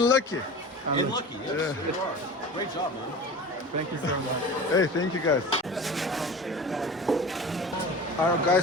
lucky. And lucky, yes, you are. Great job, man. Thank you so much. Hey, thank you guys. Are you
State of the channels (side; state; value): both; normal; correlation 0.35